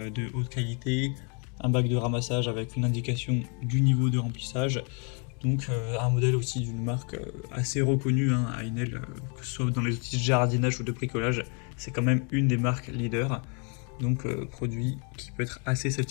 haute qualité, un bac de ramassage avec une indication du niveau de remplissage. Donc un modèle aussi d'une marque assez reconnue, Einel, que ce soit dans les outils de jardinage ou de bricolage, c'est quand même une des marques leaders. Donc produit qui peut être assez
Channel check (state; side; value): quieter; right; 37.4 dB